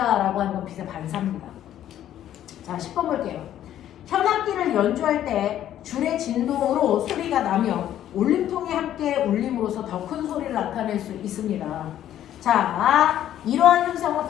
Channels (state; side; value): quieter; right; 11.6 dB